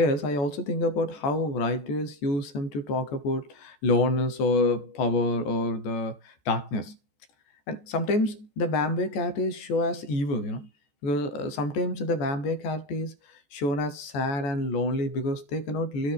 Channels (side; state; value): right; late; 14 ms